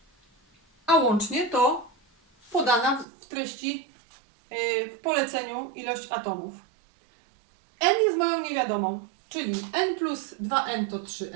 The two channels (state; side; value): drops out; left; at 3.1 s